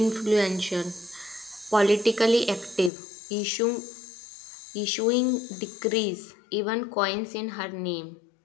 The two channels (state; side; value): drops out; right; at 2.9 s